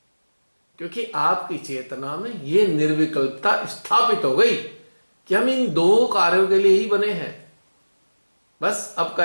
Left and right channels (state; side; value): inverted; both; correlation -1.00